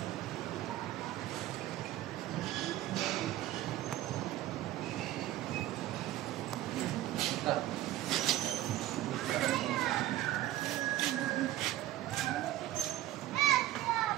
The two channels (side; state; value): left; quieter; 14.5 dB